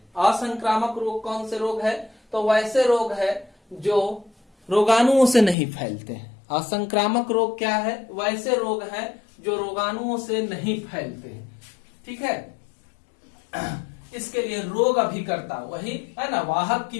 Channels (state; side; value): drops out; right; at 5.6 s